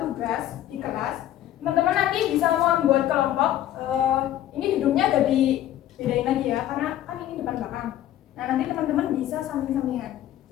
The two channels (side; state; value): right; quieter; 12.7 dB